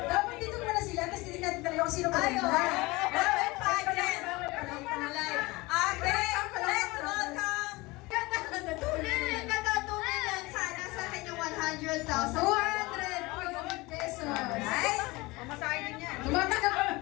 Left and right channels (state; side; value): quieter; right; 22.6 dB